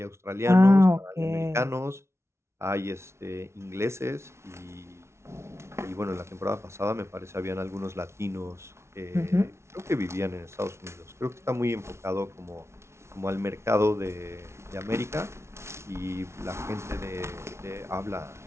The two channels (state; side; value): late; left; 0.13 ms